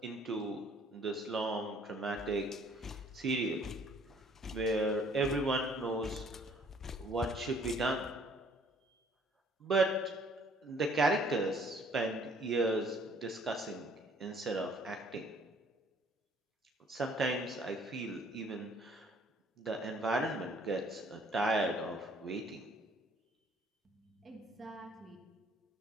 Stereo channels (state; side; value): normal; both; correlation 0.59